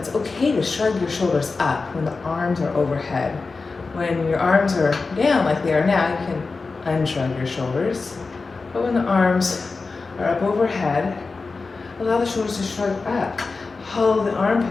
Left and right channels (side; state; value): right; quieter; 4.1 dB